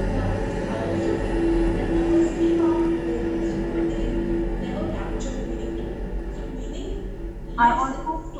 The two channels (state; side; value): identical; both; correlation 1.00